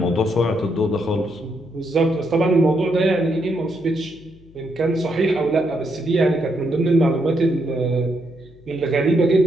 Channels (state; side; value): noise; left; hum, 26 dB below the sound